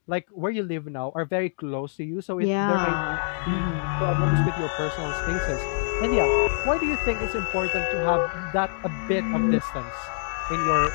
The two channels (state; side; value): silent; right; digital silence